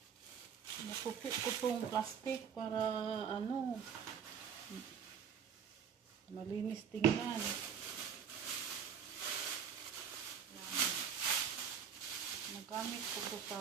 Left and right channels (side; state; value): left; quieter; 7.3 dB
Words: Nakupit ko itong plastic para malinis tingnan. Nagamit ko ito sa